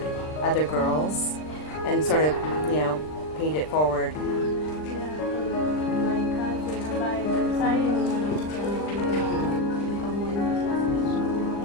other girls and sort of, paid it forward?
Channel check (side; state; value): right; late; 39 ms